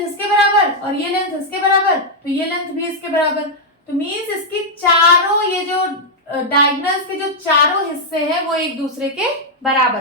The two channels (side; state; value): both; normal; correlation -0.02